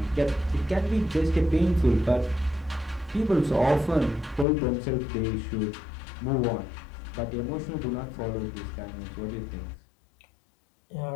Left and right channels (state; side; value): drops out; right; at 4.5 s